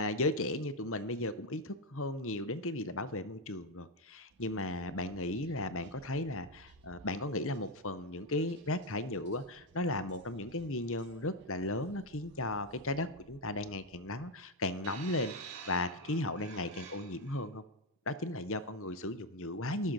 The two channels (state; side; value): normal; both; correlation 0.07